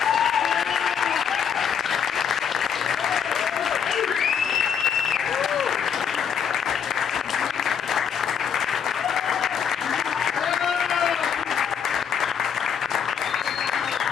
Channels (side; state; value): right; quieter; 7.5 dB